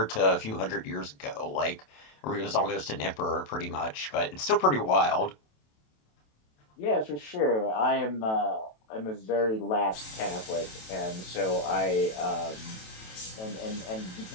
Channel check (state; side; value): late; right; 27 ms